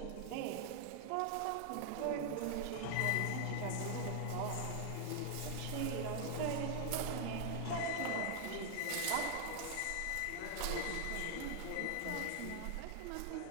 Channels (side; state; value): both; different; correlation 0.00